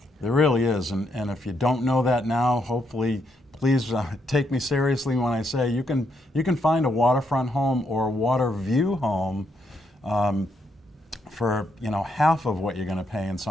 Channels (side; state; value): both; normal; correlation 0.77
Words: There really is, and if you don't know that now, hopefully, please take me seriously when I say you can find a waterfront home or a water view home for, you know, half of what you're going to pay in